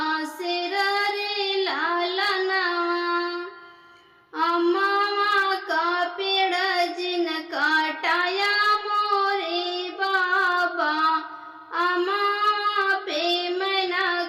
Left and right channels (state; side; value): identical; both; correlation 1.00